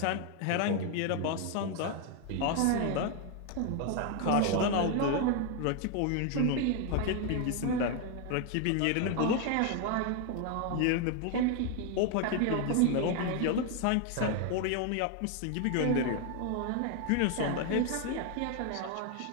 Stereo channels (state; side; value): different; both; correlation 0.01